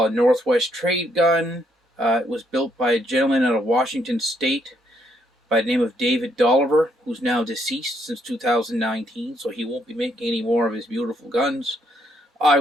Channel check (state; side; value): normal; both; correlation 0.73